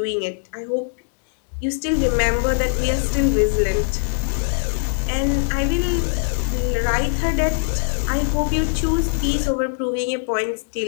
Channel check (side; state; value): right; silent; digital silence